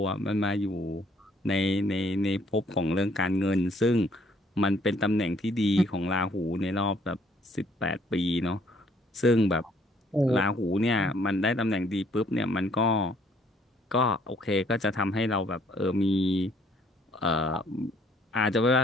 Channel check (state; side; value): normal; both; correlation 0.64